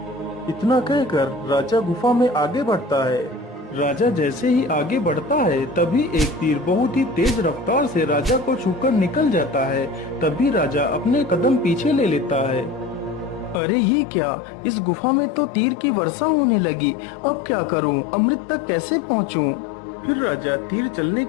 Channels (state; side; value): drops out; right; at 13.6 s